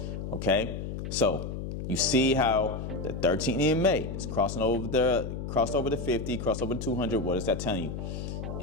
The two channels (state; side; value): noise; left; hum, 6 dB below the sound